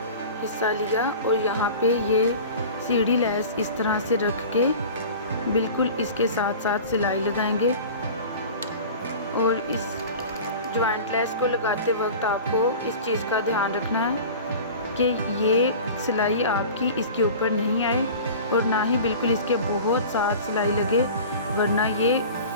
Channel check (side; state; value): both; inverted; correlation -0.37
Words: हिस्सा लिया और यहाँ पे ये सीढ़ी लेस इस तरह से रख के बिल्कुल इसके साथ साथ सिलाई लगाएंगे। और इस जॉइंट लेस को लगाते वक्त आपको इस चीज़ का ध्यान रखना है कि ये सिलाई आपकी इसके ऊपर नहीं आए और ना ही बिल्कुल इसके बहुत साथ सिलाई लगे, वरना ये